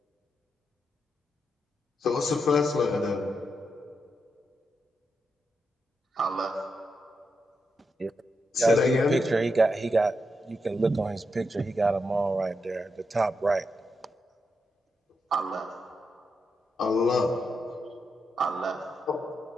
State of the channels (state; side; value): normal; both; correlation 0.84